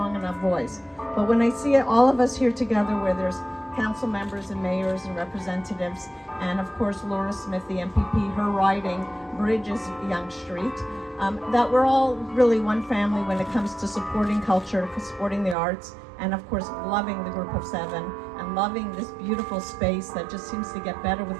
enough voice. But when I see all of us here together, where there's council members and mayors and representatives, and of course Laura Smith, the MPP, her riding bridges Yonge Street, that we're all really one family when it comes to supporting culture, supporting the arts, and of course loving the Group of 7 and loving this beautiful space that just seems to get better with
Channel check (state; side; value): drops out; left; at 15.6 s